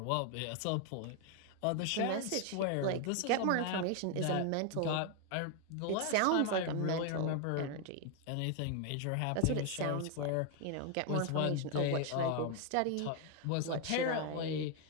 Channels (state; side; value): different; both; correlation 0.01